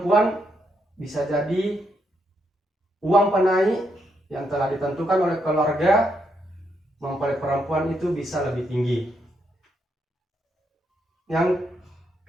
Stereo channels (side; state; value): both; normal; correlation 0.79